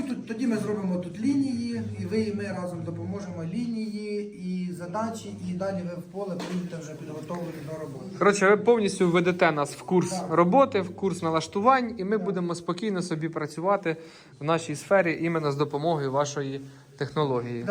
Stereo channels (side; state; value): both; identical; correlation 1.00